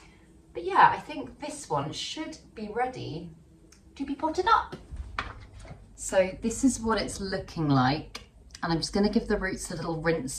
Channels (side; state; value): both; identical; correlation 1.00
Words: But yeah, I think this one should be ready to be potted up. So this is what it's looking like. And I'm just going to give the roots a little